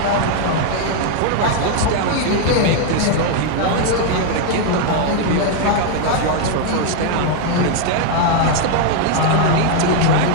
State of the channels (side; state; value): both; different; correlation 0.00